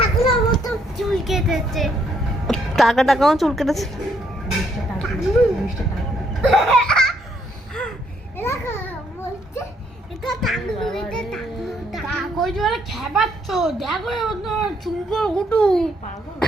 মতো চুল কেটেছে। টাকাও চুল কেটেছে।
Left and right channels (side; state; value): both; normal; correlation 0.71